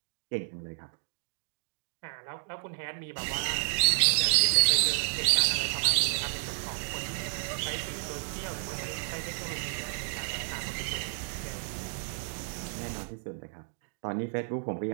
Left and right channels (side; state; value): left; silent; digital silence